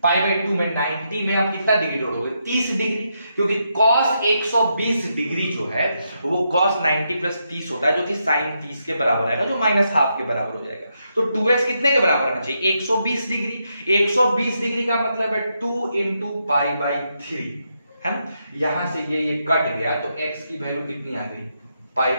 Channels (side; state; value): both; inverted; correlation -0.81